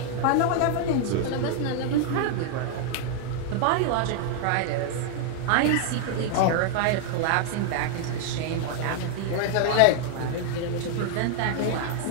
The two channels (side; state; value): both; different; correlation 0.00